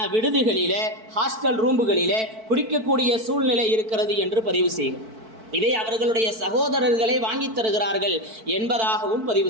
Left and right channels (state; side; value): late; left; 4.5 ms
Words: விடுதிகளில், ஹாஸ்டல் ரூம்புகளில் குடிக்கக்கூடிய சூழ்நிலை இருக்கிறது என்று பதிவு செய்கிறார். இதை அவர்களுடைய சகோதரர்களை வாங்கி தருகிறார்கள் என்பதாகவும்